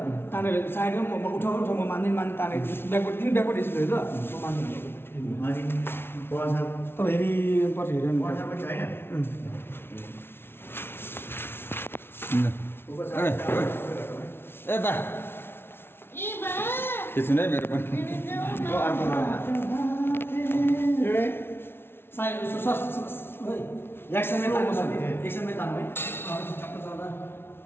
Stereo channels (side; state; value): right; late; 0.11 ms